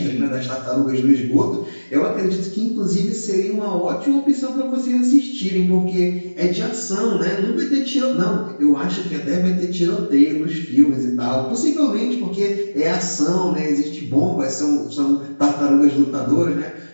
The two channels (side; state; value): both; inverted; correlation -1.00